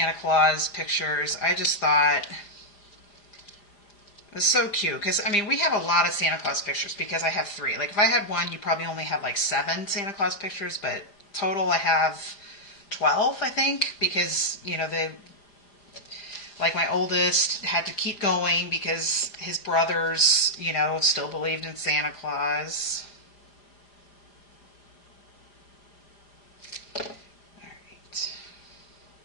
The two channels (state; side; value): late; right; 4.9 ms